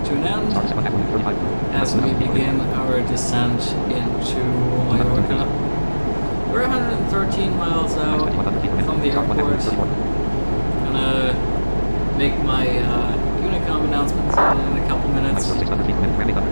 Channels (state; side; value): inverted; both; correlation -1.00